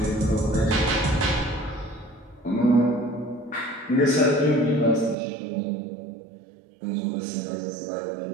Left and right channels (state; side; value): drops out; left; at 5.2 s